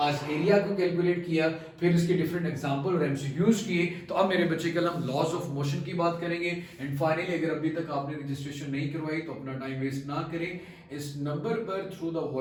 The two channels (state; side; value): identical; both; correlation 1.00